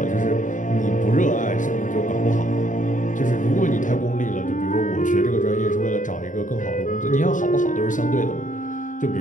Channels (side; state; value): right; late; 0.37 ms